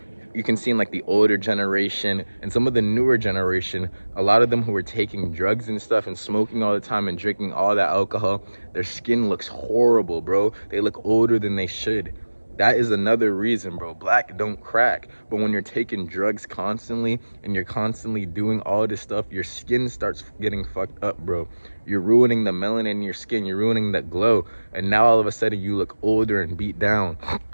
you can see in like the older generation and some of the newer generation, a lot of them who are taking drugs and stuff and smoking all the time and drinking all that alcohol, their skin looks horrible, bro. They look older than they should. That is another reason, bro. Black don't crack. But when you're taking drugs constantly and you're constantly doing all this stuff, your skin starts getting fucked up, bro. You're ruining the melanin in your skin. You're ruining that glow. And now all of a sudden you look older and beat down.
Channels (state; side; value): inverted; both; correlation -1.00